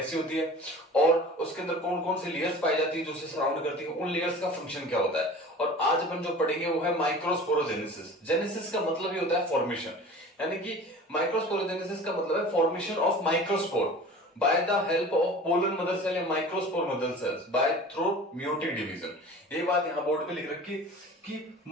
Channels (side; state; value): both; normal; correlation 0.40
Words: होती है और उसके अंदर कौन कौन सी लेयर्स पाई जाती है जो उसे सराउंड करती है, उन लेयर्स का फंक्शन क्या होता है। और आज अपन जो पढ़ेंगे वो है माइक्रोस्पोरोजेनेसिस। जेनेसिस का मतलब ही होता है फॉर्मेशन, यानी कि माइक्रोस्पोरोजेनेसिस का मतलब है formation of microspore by the help of pollen mother cell या microspore mother cells by through meiotic division। ये बात यहाँ बोर्ड पे लिख रखी कि